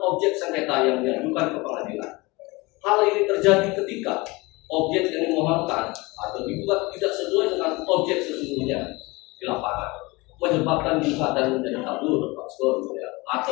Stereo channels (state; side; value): quieter; right; 24.0 dB